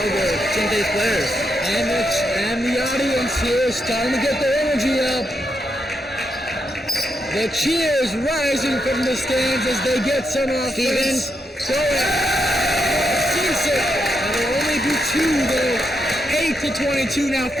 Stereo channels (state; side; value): normal; both; correlation 0.82